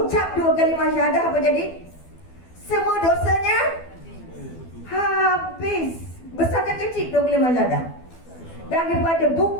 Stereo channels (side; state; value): right; late; 12 ms